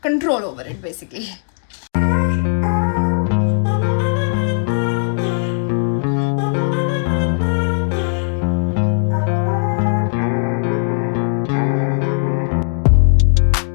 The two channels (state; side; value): silent; right; digital silence